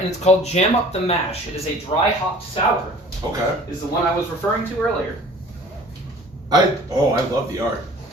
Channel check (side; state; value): both; normal; correlation 0.48